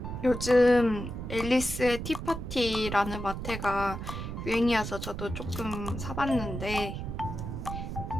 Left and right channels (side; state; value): right; noise; rumble, 6 dB below the sound